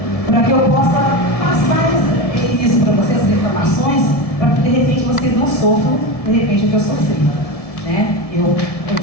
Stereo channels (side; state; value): right; late; 1.7 ms